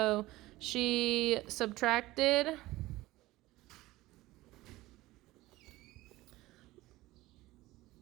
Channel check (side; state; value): left; quieter; 18.3 dB